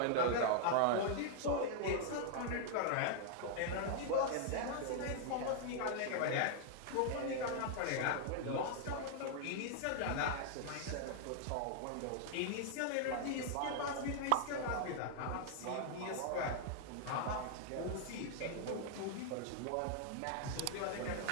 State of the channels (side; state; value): both; different; correlation 0.00